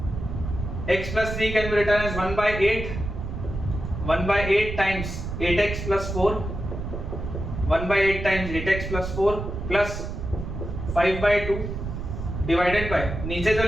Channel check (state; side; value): noise; right; rumble, 6 dB below the sound